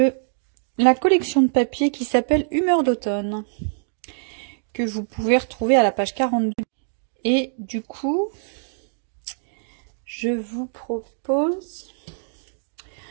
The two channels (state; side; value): silent; left; digital silence